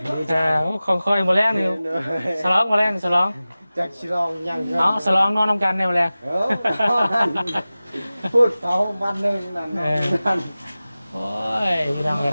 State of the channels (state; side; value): inverted; both; correlation -0.97